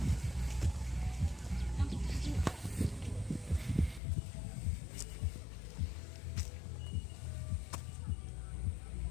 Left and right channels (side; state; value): right; drops out; at 4.0 s